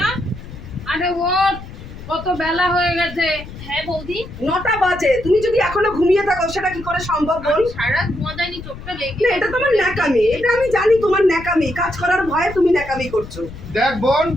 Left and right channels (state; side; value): noise; left; rumble, 14 dB below the sound